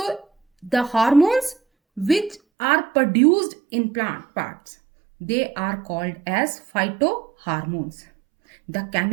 the hormones which are produced in plant parts, they are called as phytohormones. The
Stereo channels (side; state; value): left; drops out; at 2.4 s